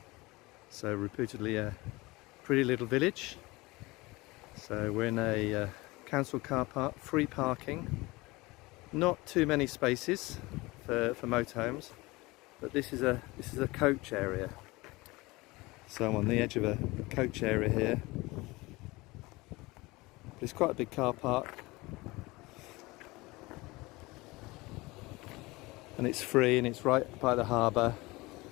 so reputedly a pretty little village. So we're in a council car park, free parking, not too many spaces for motorhomes, but this is a coach area. So I'm on the edge of a coach area here. It's quite a big car park, and it's free and it's right by the harbour.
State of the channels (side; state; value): right; quieter; 22.3 dB